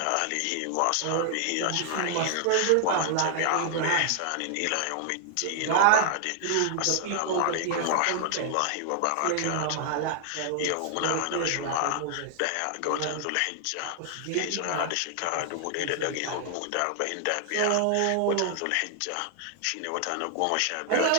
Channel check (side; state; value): both; different; correlation 0.00